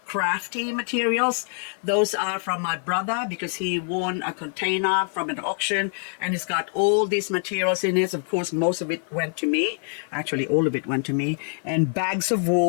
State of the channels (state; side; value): silent; right; 56 dB below the other